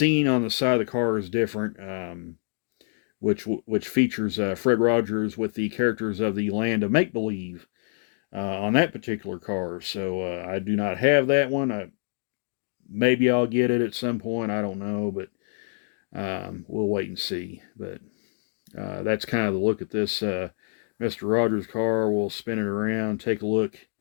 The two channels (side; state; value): right; silent; digital silence